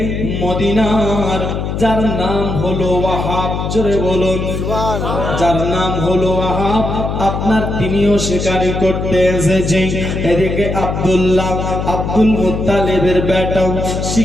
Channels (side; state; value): left; noise; hum, 3 dB below the sound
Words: মদিনার যার নাম হলো ওয়াহাব, জোরে বলুন, যার নাম হলো ওয়াহাব, আপনার তিনিও শিকারি করতে এসেছে। এদিকে আব্দুল্লাহ, আব্দুল মুত্তালিবের বেটাও